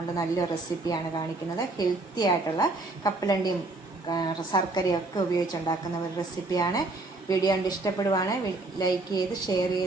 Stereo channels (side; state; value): left; quieter; 3.1 dB